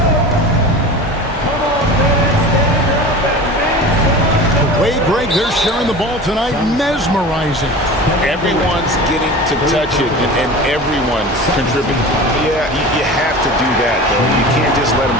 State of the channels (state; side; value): normal; both; correlation 0.35